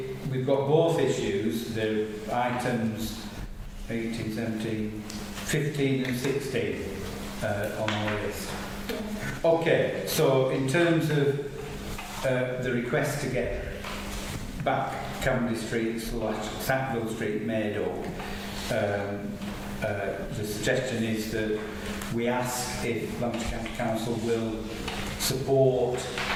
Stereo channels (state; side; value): identical; both; correlation 1.00